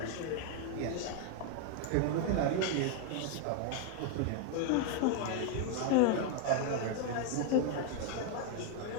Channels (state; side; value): different; both; correlation 0.00